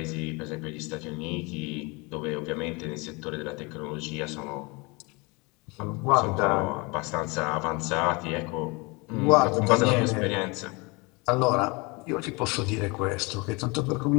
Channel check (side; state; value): right; quieter; 27.4 dB